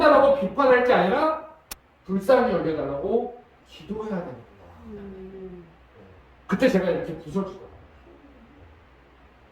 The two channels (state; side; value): identical; both; correlation 1.00